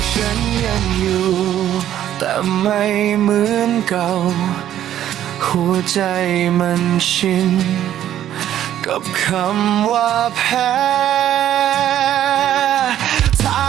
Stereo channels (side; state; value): left; quieter; 11.5 dB